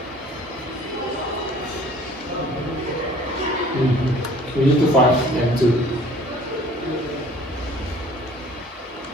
We need to find M2.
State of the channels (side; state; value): both; normal; correlation 0.51